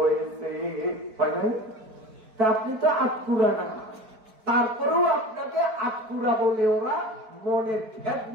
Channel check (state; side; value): late; left; 4.6 ms